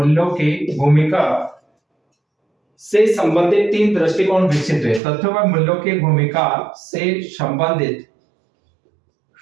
की भूमिका से संबंधित 3 दृष्टिकोण विकसित हुए। तथ्यों व मूल्यों की भूमिका से संबंधित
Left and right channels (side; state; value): left; drops out; at 5.0 s